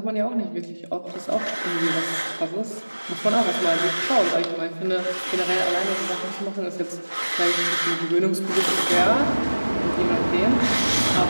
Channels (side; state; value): both; inverted; correlation -1.00